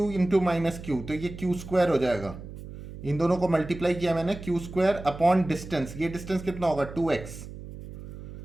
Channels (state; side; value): noise; right; hum, 13 dB below the sound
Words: इंटू -Q, तो ये Q² हो जाएगा। इन दोनों को मल्टीप्लाई किया मैंने, Q² अपॉन डिस्टेंस, ये डिस्टेंस कितना होगा 2x,